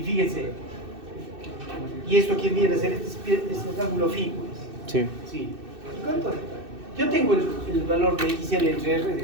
fíjense, ¿y esto quién viene a ser? Este es el ángulo phi, pues. Sí. Sí. ¿Y cuánto? Yo tengo el valor de XL entre R de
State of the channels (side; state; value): left; late; 2.6 ms